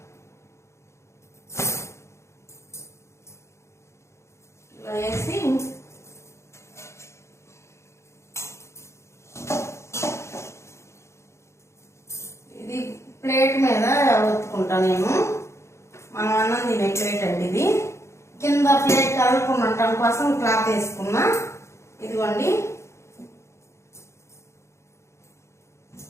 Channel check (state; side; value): late; right; 0.13 ms